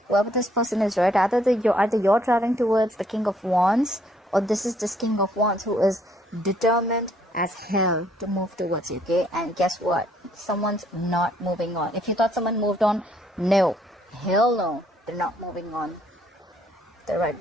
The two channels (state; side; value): normal; both; correlation 0.67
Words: Whoever this person is, right? Either you're traveling towards the King of Wands, or this is this King of Wands who is determined as hell to move towards you, okay? And guess what? Someone's not moving on. If you thought someone moved on, no. Hell no. They're not moving on. They're right